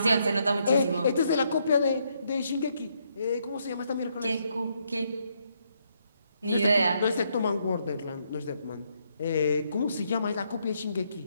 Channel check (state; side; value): inverted; both; correlation -0.75